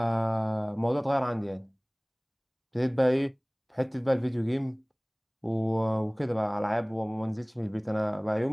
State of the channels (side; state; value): both; identical; correlation 1.00